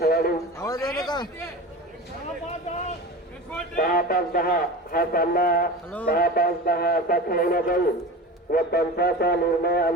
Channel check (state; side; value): normal; both; correlation 0.32